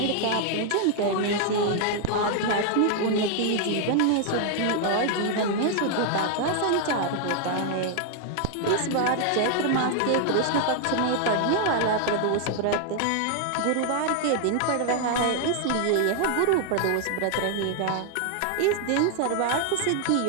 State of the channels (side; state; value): both; different; correlation 0.00